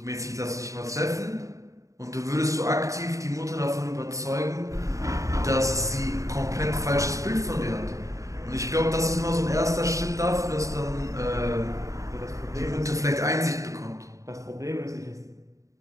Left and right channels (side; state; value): left; late; 0.16 ms